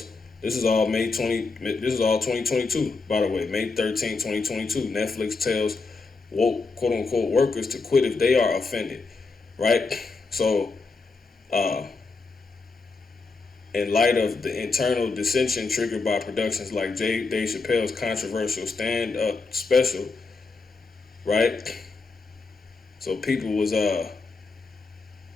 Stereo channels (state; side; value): quieter; right; 4.1 dB